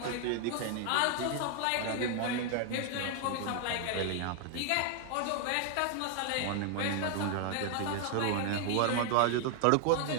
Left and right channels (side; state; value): both; different; correlation 0.00